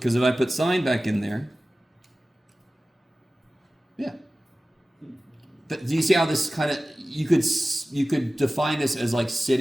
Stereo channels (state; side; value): normal; both; correlation 0.96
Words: if I put sine back in there, yeah. But do you see how this kind of, you could define this as like